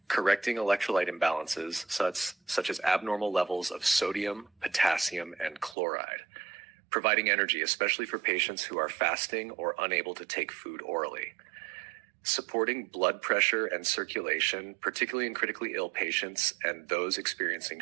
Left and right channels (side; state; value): left; drops out; at 5.8 s